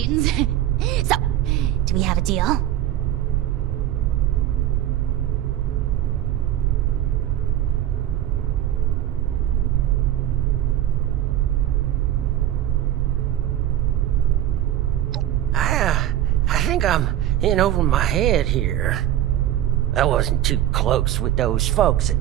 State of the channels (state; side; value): quieter; left; 12.2 dB